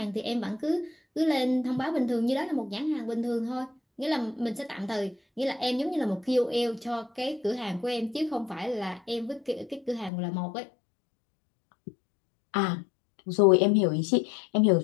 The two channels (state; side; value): drops out; right; at 10.1 s